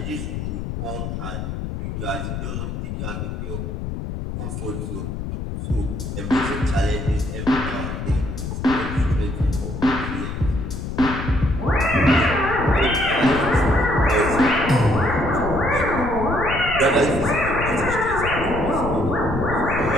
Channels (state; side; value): noise; left; rumble, 5 dB below the sound